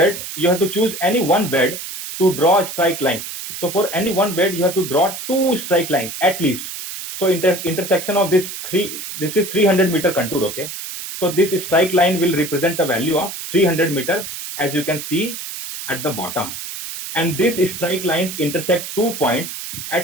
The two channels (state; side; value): noise; right; hiss, 8 dB below the sound